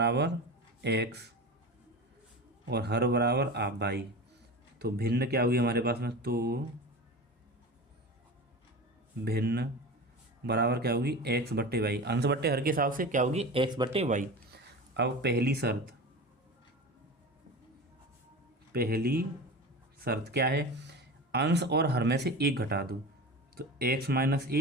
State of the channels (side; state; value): both; normal; correlation 0.30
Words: x और हर बराबर आप y, तो भिन्न क्या होगी हमारे पास में, तो भिन्न बराबर क्या होगी, x बट्टे वाई, अंश बट्टे हर के हिसाब से क्या होगी, x बट्टे वाई। अब पहली शर्त क्या है, अंश और हर में से 1 घटा दो, तो x -